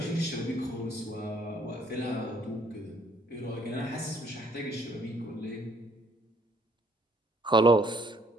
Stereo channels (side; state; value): both; normal; correlation 0.64